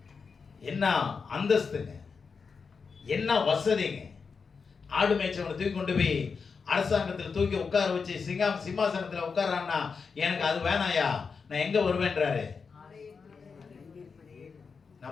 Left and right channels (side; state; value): right; quieter; 5.3 dB